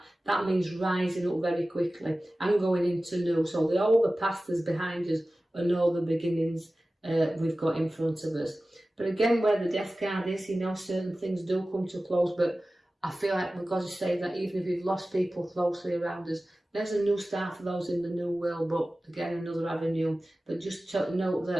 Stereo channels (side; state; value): both; normal; correlation 0.96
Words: That means rising up very quickly and going into new. So all the past is behind us and all the beginnings we've got in front of us. But again, where the Death card is, you know, certain things do come to a close, but I feel like we've got to say that even if we've lost people closely around us, there's a new start for those in the new world, but again, another avenue. But just to note